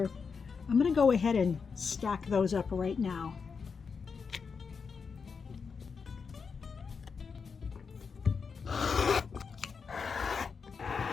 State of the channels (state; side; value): quieter; right; 5.5 dB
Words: I'm going to go ahead and stack those up right now.